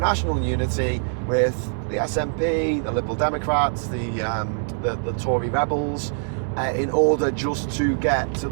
unity with the SNP, the Liberal Democrats, the Tory rebels, in order just to get to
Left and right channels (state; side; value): silent; left; digital silence